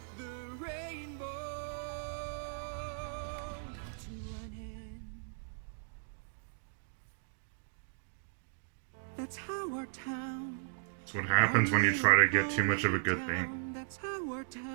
the rainbow to an end. That's how our town. That's what happens when you try to get too much of a good thing. That's how our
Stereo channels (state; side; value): silent; left; digital silence